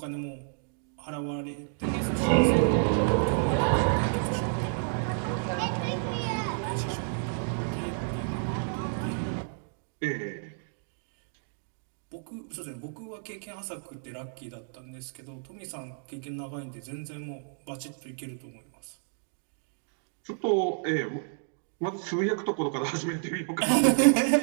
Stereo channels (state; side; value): silent; left; digital silence